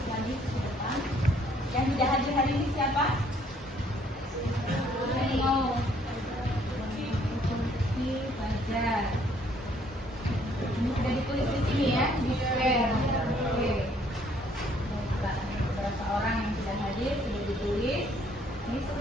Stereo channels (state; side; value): normal; both; correlation 0.64